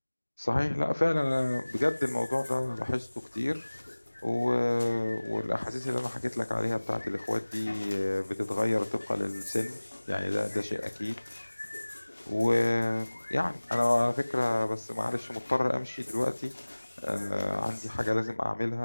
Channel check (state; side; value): inverted; both; correlation -1.00